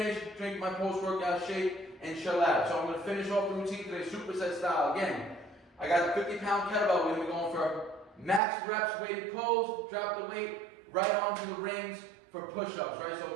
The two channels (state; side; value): drops out; left; at 8.4 s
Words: drink my post-workout shake, and chill out. So I'm going to finish off the routine today, superset style. Again, I got a 50-pound kettlebell. We're going to be going for max reps, weighted pulls, drop the weight right onto the rings for push-ups, right?